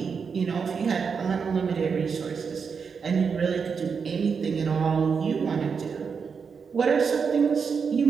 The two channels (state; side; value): quieter; left; 5.9 dB